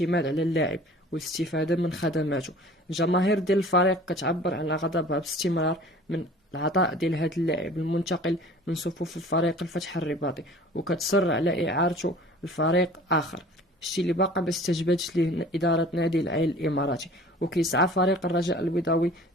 على اللاعب والاستفادة من خدماته. الجماهير ديال الفريق كتعبر عن غضبها باستمرار من العطاء ديال هذا اللاعب المنتقل من صفوف الفريق الفتح الرباطي، وكتصر على إعارته لفريق آخر، الشيء اللي باقا ما استجابتش ليه إدارة نادي العين الإماراتي. وكيسعى فريق الرجاء البيضاوي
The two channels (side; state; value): both; normal; correlation 0.47